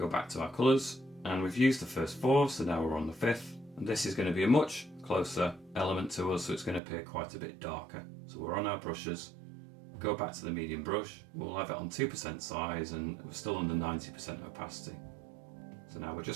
back to our colours, and we've used the first four, so now we're on the fifth. And this is going to be a much closer element to us, so it's going to appear quite a bit darker. So we're on our brushes, go back to the medium brush, we'll have it on 2% size and we're still under 90% opacity. So now we're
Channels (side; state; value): left; drops out; at 6.8 s